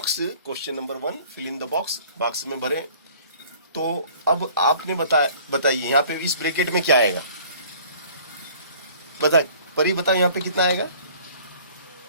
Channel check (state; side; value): inverted; both; correlation -0.51